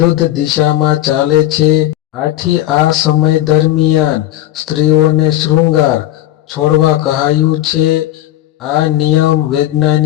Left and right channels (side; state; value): right; quieter; 13.6 dB